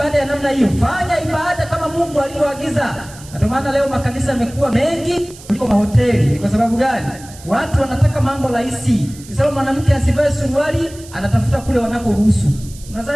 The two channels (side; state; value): right; noise; hiss, 19 dB below the sound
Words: ya namna hiyo. Fanya ibada kama Mungu alivyoagiza. Ndio maana leo makanisa yamekuwa mengi kuliko mahoteli. Ni kwa sababu gani? Watu wanataka mambo rahisi. Kisema mwanamke asivae suruali, anatafuta kule wanakoruhusu.